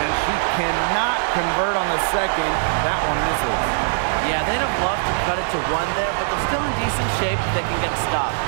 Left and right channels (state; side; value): silent; left; digital silence